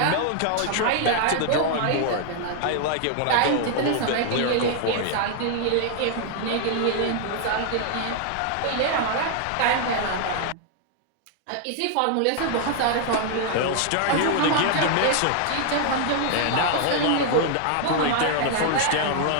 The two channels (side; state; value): both; different; correlation 0.00